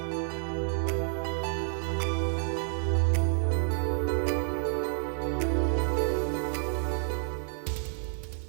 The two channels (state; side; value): silent; left; 58 dB below the other